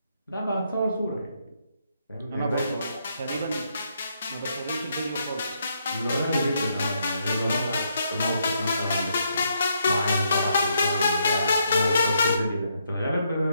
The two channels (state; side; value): inverted; both; correlation -0.76